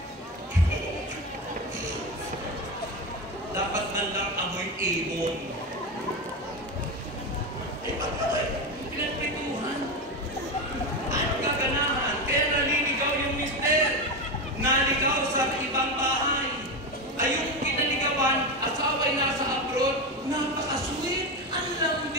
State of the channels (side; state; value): both; normal; correlation 0.17